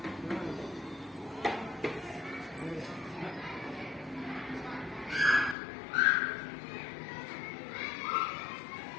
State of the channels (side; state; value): right; drops out; at 5.6 s